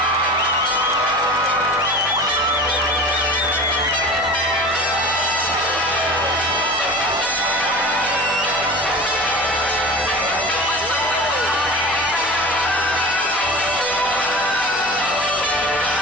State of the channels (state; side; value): normal; both; correlation 0.35